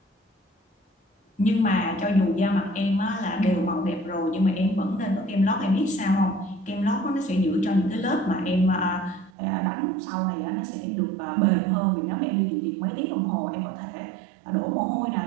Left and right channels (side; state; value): left; drops out; at 9.3 s